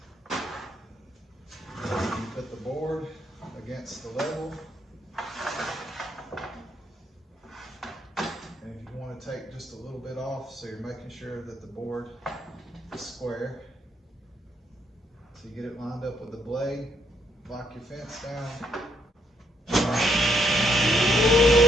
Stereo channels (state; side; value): normal; both; correlation 0.74